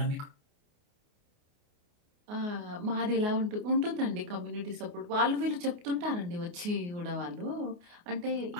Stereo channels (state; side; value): late; left; 28 ms